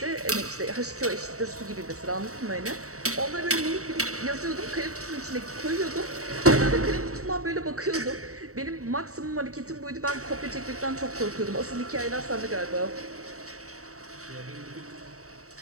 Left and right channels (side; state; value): left; late; 0.65 ms